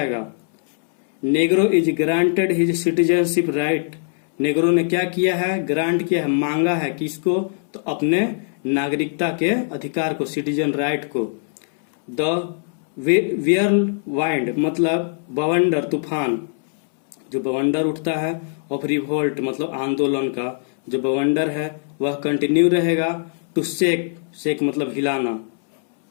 Negro is granted his citizenship right, Negro ने क्या किया है? ग्रांट किया है, मांगा है। किसको? तो अपने नागरिकता के अधिकार को, सिटीजन राइट को। द वाइंड मतलब बवंडर, तूफान, जो बवंडर उठता है ऑफ रिवोल्ट मतलब आंदोलन का जो बवंडर है वह कंटिन्यू रहेगा। टू शेक मतलब हिलाना।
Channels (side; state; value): right; silent; 65 dB below the other